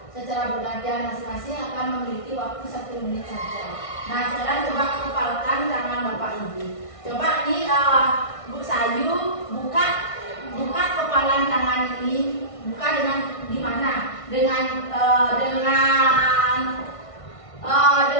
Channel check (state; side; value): late; right; 1.6 ms